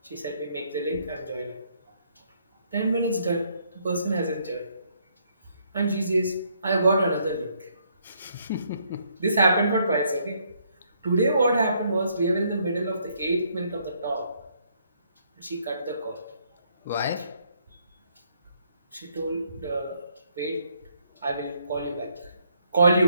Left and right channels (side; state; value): both; inverted; correlation -0.70